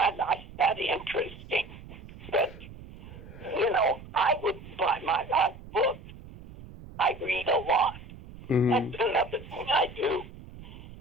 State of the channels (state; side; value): noise; right; rumble, 16 dB below the sound